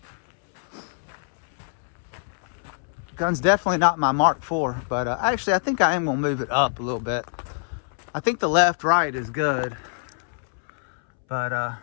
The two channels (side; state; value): right; silent; 62 dB below the other